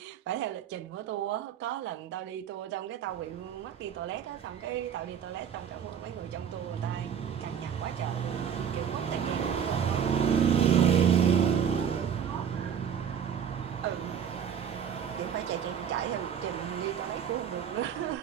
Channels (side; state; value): left; quieter; 8.2 dB